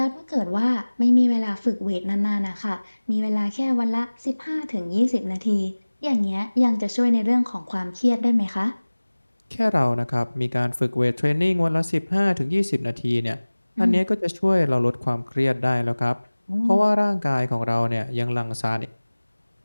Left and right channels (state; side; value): inverted; both; correlation -1.00